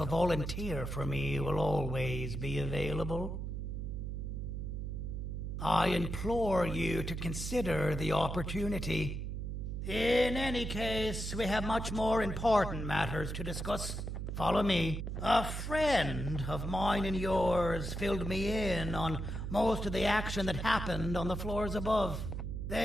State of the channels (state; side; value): noise; right; hum, 4 dB below the sound